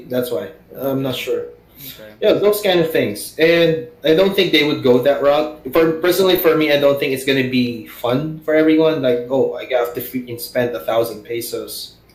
that's why. I'm not sure. Okay. Yeah, those kind of things, and I don't think they would go that route. For me, I don't think it's gonna be fun for everyone. Like, oh, I have to freaking spend 1,000 pesos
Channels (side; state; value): both; identical; correlation 1.00